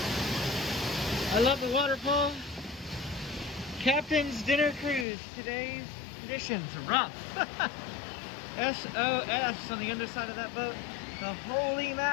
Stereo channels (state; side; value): drops out; right; at 5.1 s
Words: I love the waterfall. Captain's Dinner Cruise. Today's conditions rough. SOS on the underside of that boat. The holy